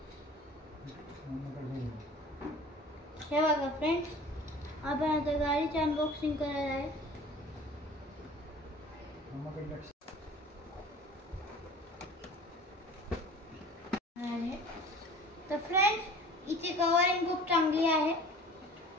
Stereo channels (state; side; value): normal; both; correlation 0.44